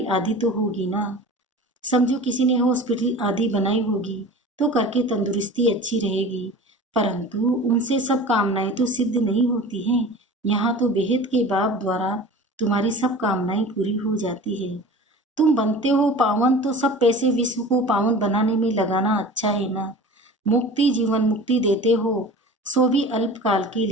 आदि तो होगी ना। समझो किसी ने हॉस्पिटल आदि बनाई होगी तो करके तंदुरुस्ती अच्छी रहेगी, परंतु उनसे सब कामनाएं तो सिद्ध नहीं होती हैं। यहाँ तो बेहद के बाप द्वारा तुम्हारी सब कामनाएं पूरी हो जाती है। तुम बनते हो पावन तो सब पैसे विश्व को पावन बनाने में लगाना अच्छा है ना। मुक्ति, जीवन मुक्ति देते हो, सो भी अल्पकाल के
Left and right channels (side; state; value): both; normal; correlation 0.38